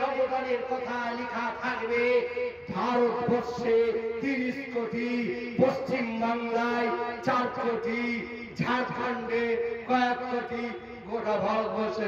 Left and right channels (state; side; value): identical; both; correlation 1.00